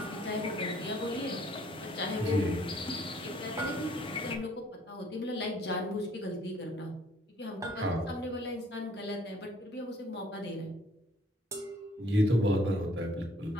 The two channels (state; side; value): normal; both; correlation 0.60